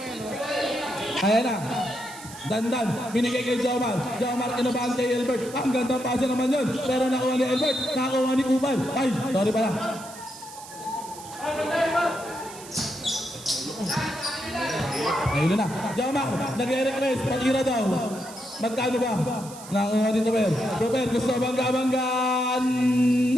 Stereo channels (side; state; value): right; noise; hiss, 16 dB below the sound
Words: Ayan na. Dandan, binigay kay Jomar. Jomar, kinabahan kay Albert. Ang ganda pasa naman yun. Pero nakuha ni Albert, nakuha ni Kumal. Ay, sorry pala. Ayun na. Jomar, nag-request, patira daw. Magkano ba? Nakuha ni Toper. Toper, gusto bangga-banggaan.